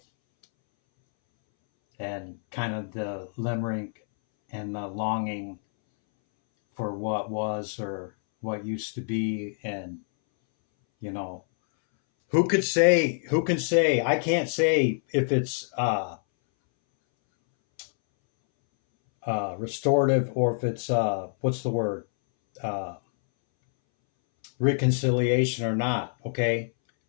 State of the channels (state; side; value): silent; right; 60 dB below the other